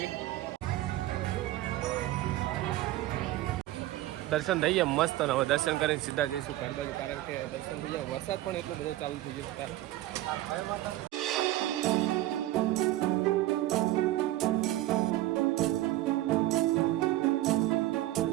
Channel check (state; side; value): quieter; left; 15.7 dB